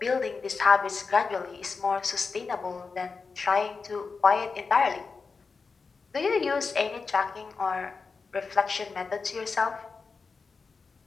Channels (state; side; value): quieter; right; 4.7 dB